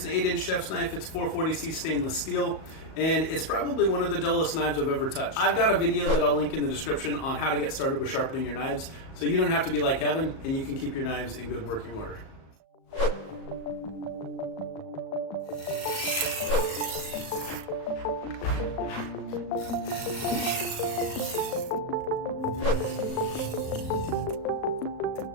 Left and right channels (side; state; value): right; late; 37 ms